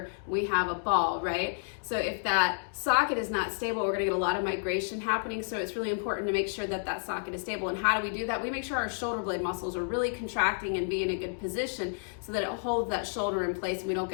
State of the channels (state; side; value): silent; right; digital silence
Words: we have a ball, right? So if that socket is not stable, we're gonna get a lot of migration happening. So it's really important to make sure that that socket is stable. And how do we do that? We make sure our shoulder blade muscles are really contracting and be in a good position so that it holds that shoulder in place and we don't